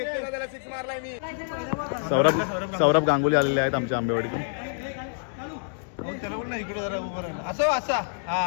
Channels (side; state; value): right; silent; digital silence